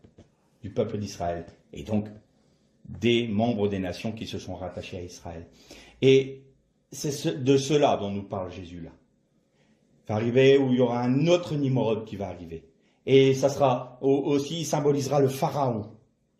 du peuple d'Israël, et donc des membres des nations qui se sont rattachés à Israël. Et c'est de cela dont nous parle Jésus là. Il va arriver où il y aura un autre Nimrod qui va arriver. Et ça sera aussi, il symbolisera le Pharaon.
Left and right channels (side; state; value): both; identical; correlation 1.00